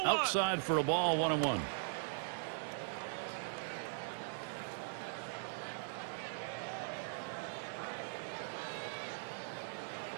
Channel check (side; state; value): left; silent; digital silence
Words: Outside for a ball. 1-1.